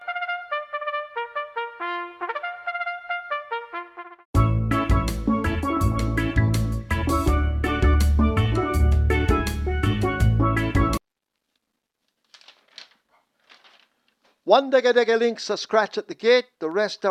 One dega links a scratch at the gate, the rest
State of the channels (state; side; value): identical; both; correlation 1.00